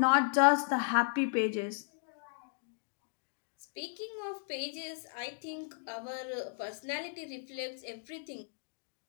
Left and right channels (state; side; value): silent; right; digital silence